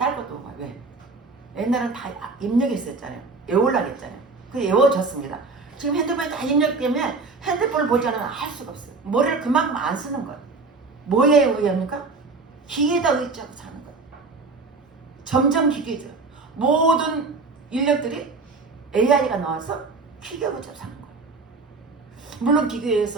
것도 봐요. 왜? 옛날엔 다 입력했었잖아요. 외우려고 했잖아요. 그게 외워졌습니다. 지금 핸드폰에 다 입력되면 핸드폰을 보지 않으면 할 수가 없어요. 머리를 그만큼 안 쓰는 거예요. 뭐에 의합니까? 기계에다 의지하고 사는 거예요. 점점 기계죠. 모든 인력들이 AI가 나와서 기계하고 사는 거예요. 물론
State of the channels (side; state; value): left; quieter; 3.9 dB